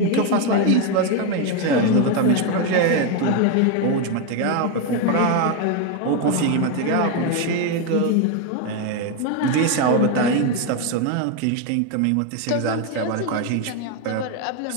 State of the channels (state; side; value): different; both; correlation 0.01